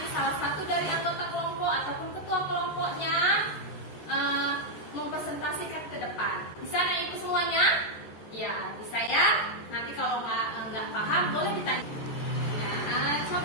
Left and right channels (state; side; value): late; right; 14 ms